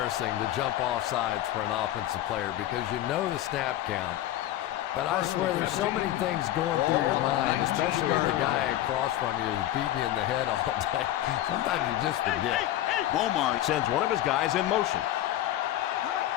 to jump off sides for an offensive player because you know the snap count. But I swear there's so many things going through your mind, especially if the guy across from you is beating you in the head all day. Sometimes you just forget. Beaumont sends one of his guys in motion.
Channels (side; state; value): right; quieter; 13.6 dB